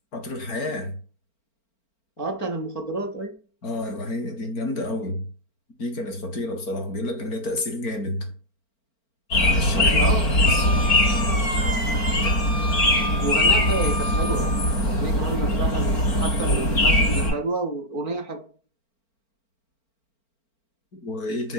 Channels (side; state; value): right; late; 4.4 ms